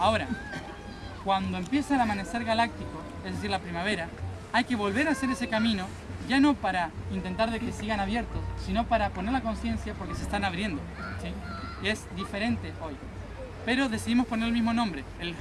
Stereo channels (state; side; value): identical; both; correlation 1.00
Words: cuando empieza el amanecer galáctico, es decir, la primavera, hay que volver a hacer ese camino, ya no para intentar de que sigan abiertos, sino para poner la conciencia porque se están abriendo, ¿sí? Es diferente hoy, pero decidimos poner el mismo nombre, el